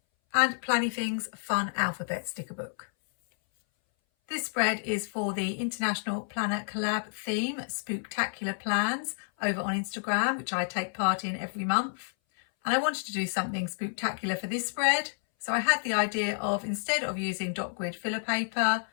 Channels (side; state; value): right; silent; 58 dB below the other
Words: and Planything's Fun Alphabet sticker book. This spread is for the International Planner Collab theme, Spooktacular plans, over on Instagram, which I take part in every month. And I wanted to do something spooktacular for this spread, so I had the idea of, instead of using dot grid filler paper,